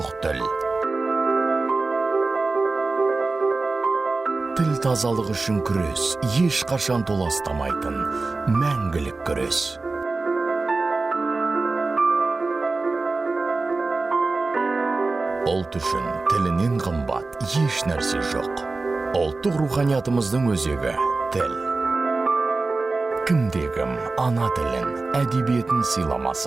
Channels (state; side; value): quieter; left; 3.6 dB